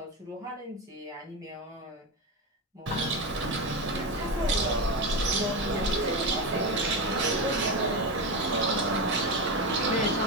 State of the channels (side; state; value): both; normal; correlation 0.16